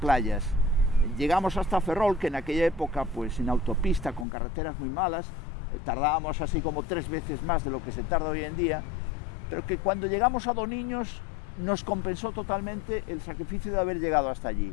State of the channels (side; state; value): right; drops out; at 4.2 s